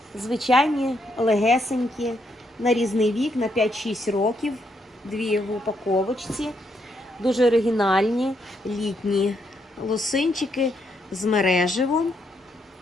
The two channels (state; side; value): normal; both; correlation 0.76